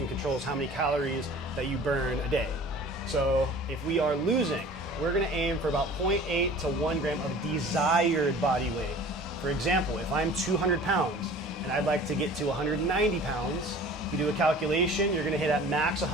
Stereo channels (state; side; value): normal; both; correlation 0.44